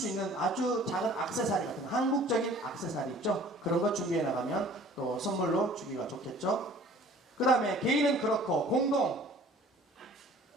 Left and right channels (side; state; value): both; normal; correlation 0.50